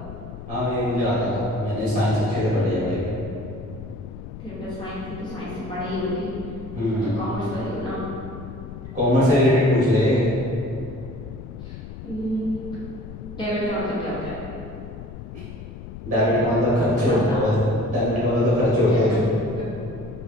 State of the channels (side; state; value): left; noise; rumble, 12 dB below the sound